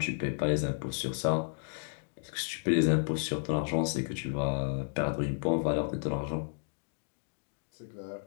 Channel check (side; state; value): right; silent; digital silence